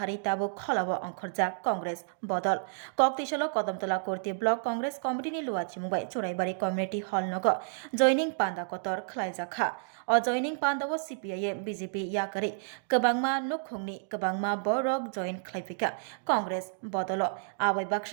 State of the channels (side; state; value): left; silent; digital silence